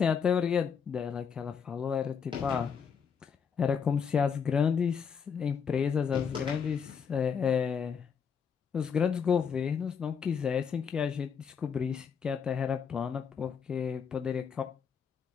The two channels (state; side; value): quieter; right; 6.7 dB